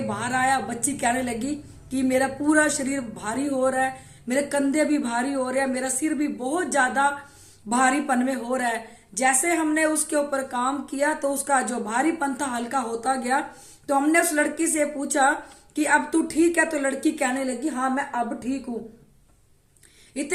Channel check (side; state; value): both; identical; correlation 1.00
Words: बाहर आया। बच्ची कहने लगी कि मेरा पूरा शरीर भारी हो रहा है, मेरे कंधे भी भारी हो रहे हैं, मेरा सिर भी बहुत ज्यादा भारीपन में हो रहा है। जैसे हमने उसके ऊपर काम किया तो उसका जो भारीपन था हल्का होता गया। तो हमने उस लड़की से पूछा कि अब तू ठीक है? तो लड़की कहने लगी हाँ मैं अब ठीक हूं।